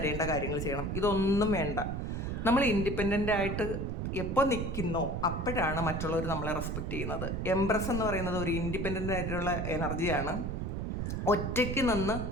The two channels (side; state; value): right; noise; rumble, 2 dB below the sound